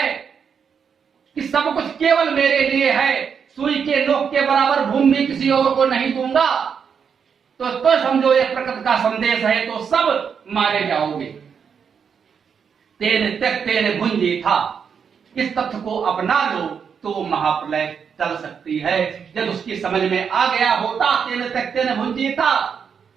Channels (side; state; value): left; quieter; 6.8 dB